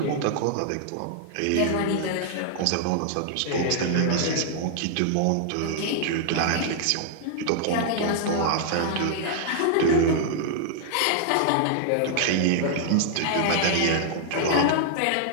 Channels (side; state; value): both; different; correlation -0.01